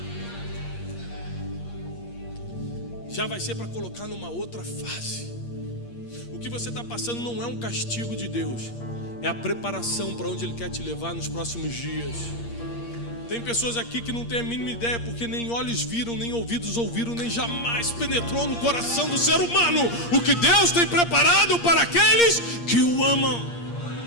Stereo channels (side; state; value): right; late; 8.6 ms